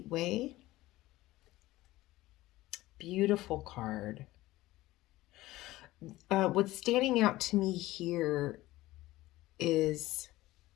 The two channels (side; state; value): right; quieter; 17.5 dB